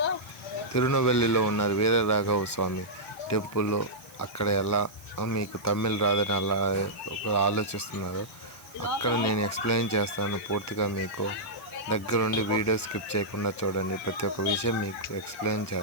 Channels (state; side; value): noise; right; hiss, 23 dB below the sound